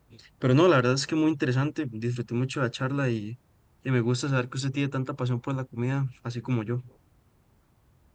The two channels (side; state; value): both; identical; correlation 1.00